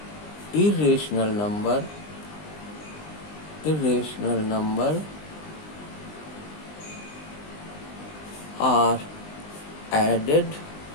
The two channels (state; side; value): late; right; 20 ms